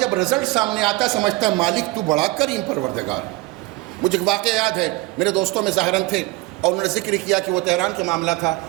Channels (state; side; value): quieter; left; 20.5 dB